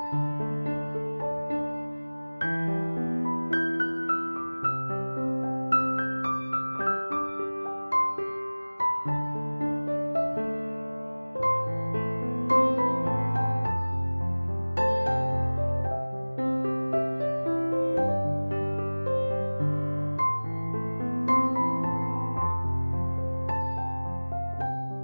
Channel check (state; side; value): inverted; both; correlation -1.00